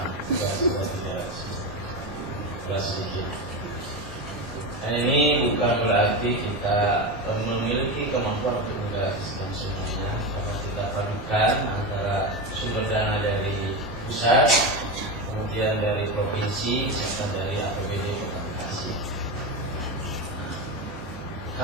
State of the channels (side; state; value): both; normal; correlation 0.18